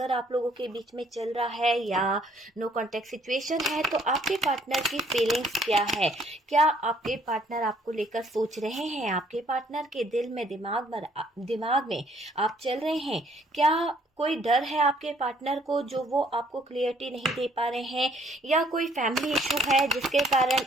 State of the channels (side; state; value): both; normal; correlation 0.63